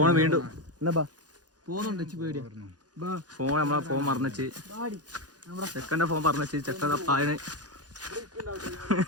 വീണ്ടും എന്നാ ബാ ഫോണുണ്ട് പേടിയാ ഫോൺ നമ്മളെ ഫോൺ മറന്നുവെച്ച് ചെക്കൻ്റെ ഫോൺ പറഞ്ഞുവെച്ച് ചെക്കൻ പായന്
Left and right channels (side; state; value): left; late; 0.69 ms